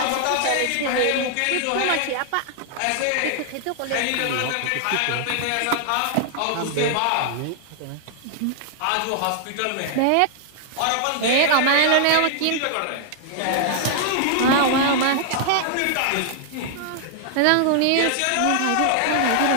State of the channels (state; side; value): different; both; correlation 0.00